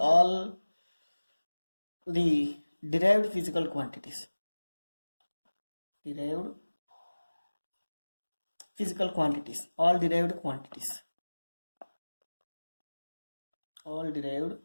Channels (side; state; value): both; inverted; correlation -1.00